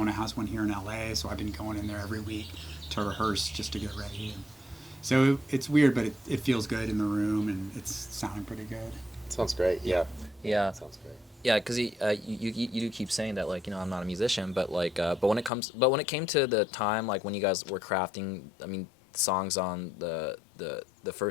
has one here in LA, so I've been going in there every week to rehearse just to get ready. And so it's weird, but it feels good in the room, and it's sounding pretty good. Sounds great. Yeah. Yeah. Sounds great. Yeah, because you do keep saying that, like, I'm not a musician, but like but when it came to the time, like when you guys were crafting, I mean, songs on the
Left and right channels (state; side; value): drops out; right; at 15.5 s